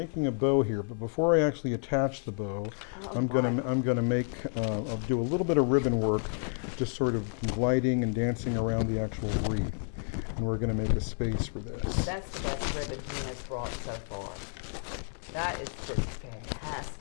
a bow here, but before I actually attach the bow, I'm gonna make I'll do a little bit of ribbon work, just sort of gliding and dancing around the actual wreath, and we're gonna make a space for this. That's the best ribbon he has brought so far. That is just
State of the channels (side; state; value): right; silent; 57 dB below the other